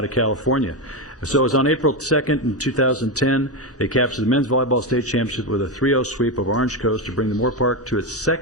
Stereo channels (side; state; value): both; normal; correlation 0.11